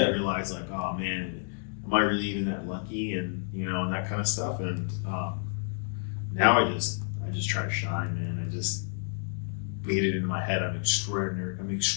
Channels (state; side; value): silent; right; 56 dB below the other